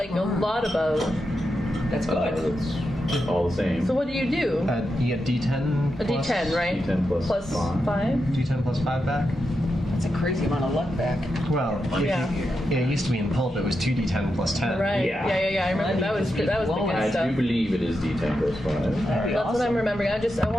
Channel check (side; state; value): both; normal; correlation 0.87